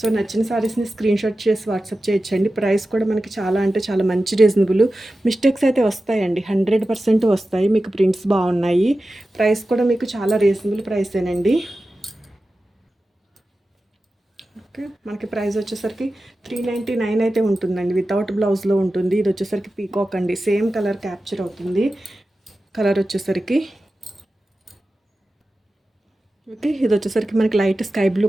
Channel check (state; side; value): normal; both; correlation 0.94